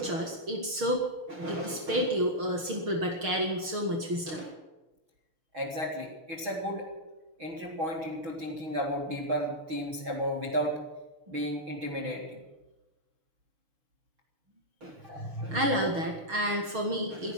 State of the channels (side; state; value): left; late; 6.4 ms